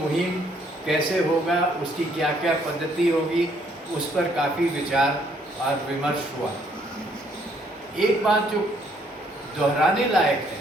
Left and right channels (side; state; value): both; normal; correlation 0.67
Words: कैसे होगा, उसकी क्या क्या पद्धति होगी, उस पर काफ़ी विचार और विमर्श हुआ। एक बात जो दोहराने लायक